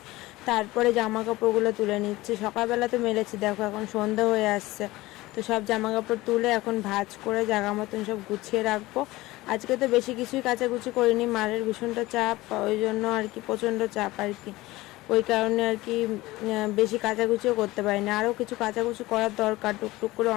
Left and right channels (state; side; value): quieter; right; 19.0 dB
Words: তারপরে জামা কাপড়গুলো তুলে নিচ্ছি। সকালবেলা তো মেলেছি, দেখো এখন সন্ধ্যা হয়ে আসছে, তো সব জামা কাপড় তুলে এখন ভাঁজ করে জায়গা মতন সব গুছিয়ে রাখবো। আজকে তো বেশি কিছুই কাচাকুচি করিনি, মারের ভীষণটা চাপ, ওই জন্য আর কি প্রচণ্ড চাপ আর কি, ওই কারণে আর কি বেশি কাচাকুচিও করতে পারিনি। আরও কিছু কাচাকুচি করার দরকার, টুকটুক করে